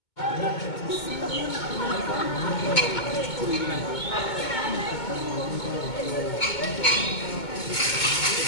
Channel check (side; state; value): right; late; 2.2 ms